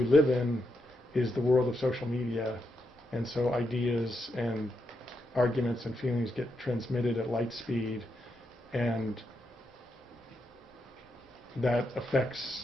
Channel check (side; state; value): both; normal; correlation 0.83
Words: live in, is the world of social media, and so ideas and arguments and feelings get transmitted at light speed, and that